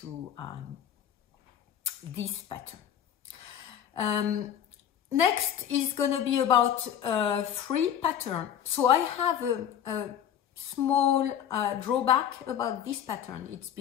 this pattern. Next is going to be about free pattern. So I have a small drawback about this pattern. It's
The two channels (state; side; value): quieter; right; 9.6 dB